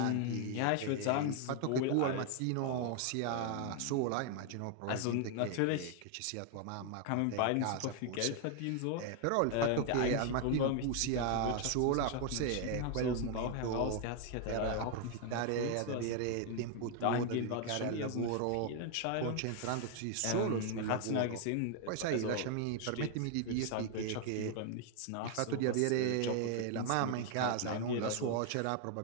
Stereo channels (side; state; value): both; different; correlation 0.00